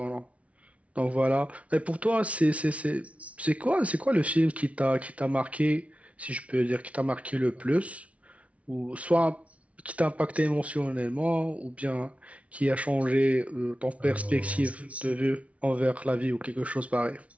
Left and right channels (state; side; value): late; left; 0.065 ms